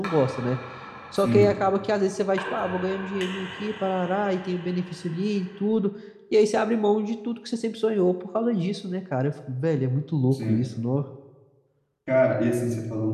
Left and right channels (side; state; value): both; identical; correlation 1.00